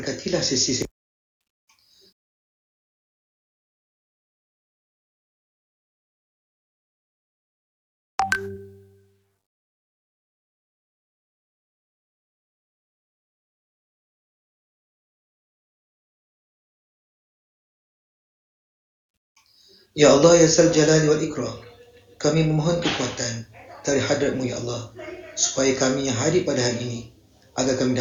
sesi. Ya Allah, Ya Zal Jalali wal Ikram, kami memohon kekuatan dari hadratmu Ya Allah, supaya kami yang hadir pada hari ini agar kami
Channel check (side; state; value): both; identical; correlation 1.00